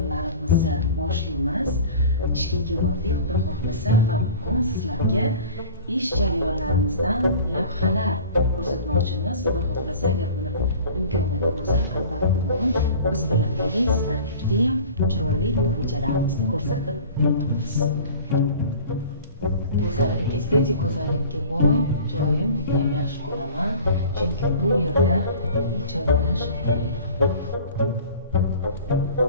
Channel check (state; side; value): inverted; both; correlation -0.42